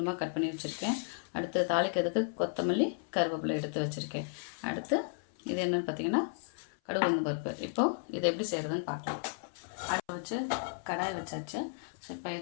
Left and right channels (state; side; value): silent; right; 55 dB below the other